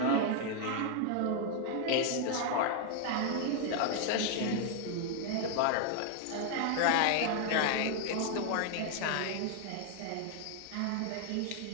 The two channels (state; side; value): different; both; correlation 0.00